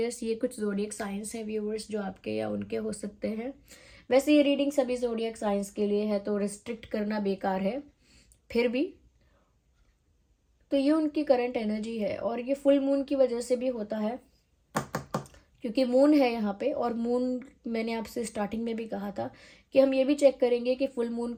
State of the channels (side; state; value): both; identical; correlation 1.00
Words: ये कुछ जोडियक साइंस है व्यूअर्स जो आपके या उनके हो सकते हैं। वैसे ये रीडिंग सभी जोडियक साइंस के लिए है, तो रिस्ट्रिक्ट करना बेकार है, फिर भी तो ये उनकी करंट एनर्जी है। और ये फुल मून की वजह से भी होता है, क्योंकि मून है यहाँ पे, और मून मैंने आपसे स्टार्टिंग में भी कहा था कि हम ये भी चेक करेंगे कि फुल मून